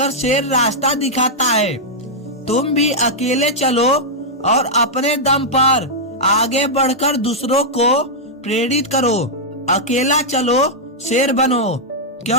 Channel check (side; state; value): both; normal; correlation -0.06